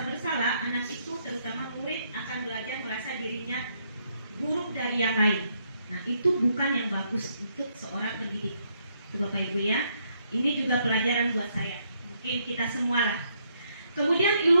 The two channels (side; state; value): both; inverted; correlation -0.74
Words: bersalah, anak itu terutama murid akan belajar merasa dirinya buruk dari yang lain. Nah, itu bukan yang bagus untuk seorang pendidik. Itu Bapak Ibu ya. Ini juga pelajaran buat saya. Mungkin kita semua lah. Kemudian